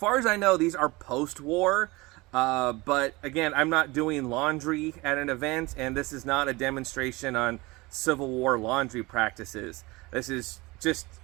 as I know, these are post-war, but again, I'm not doing laundry at an event, and this is not a demonstration on Civil War laundry practices. This is just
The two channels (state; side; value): quieter; left; 22.9 dB